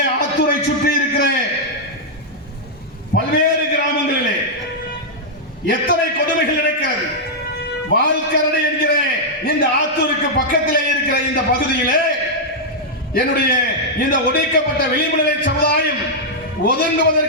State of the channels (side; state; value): both; normal; correlation -0.06